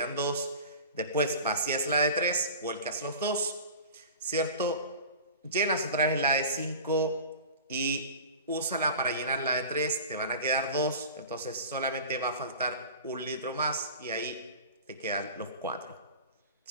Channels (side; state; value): both; inverted; correlation -0.37